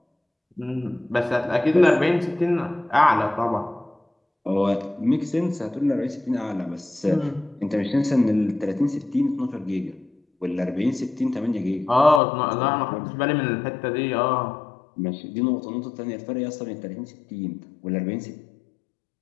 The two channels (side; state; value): right; drops out; at 12.2 s